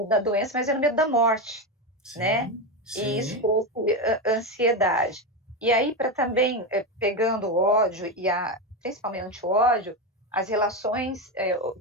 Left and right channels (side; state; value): both; normal; correlation 0.13